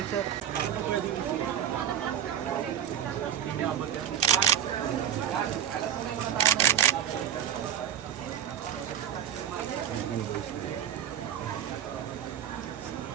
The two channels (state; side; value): quieter; left; 9.5 dB